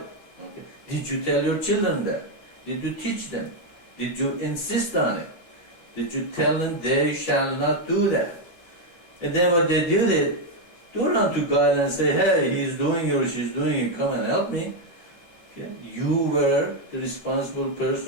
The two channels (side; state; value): right; late; 12 ms